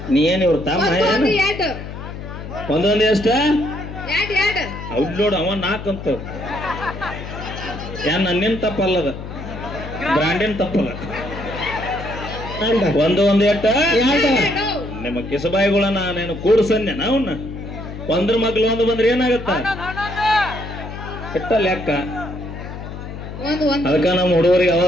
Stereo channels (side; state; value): left; noise; hum, 10 dB below the sound